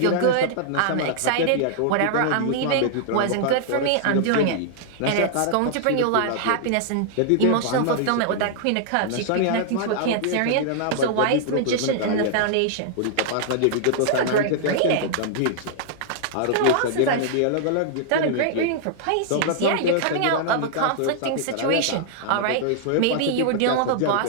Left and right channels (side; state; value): both; different; correlation -0.01